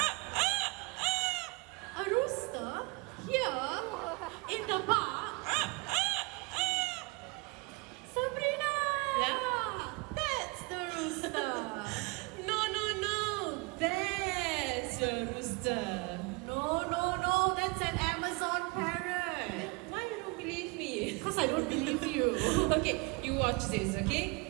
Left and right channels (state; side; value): quieter; left; 28.2 dB